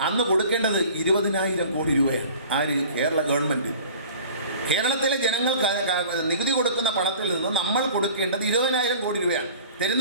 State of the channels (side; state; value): both; inverted; correlation -0.45